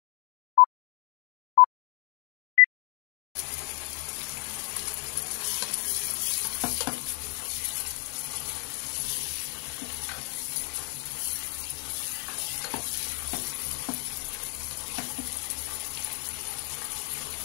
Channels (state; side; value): quieter; right; 37.7 dB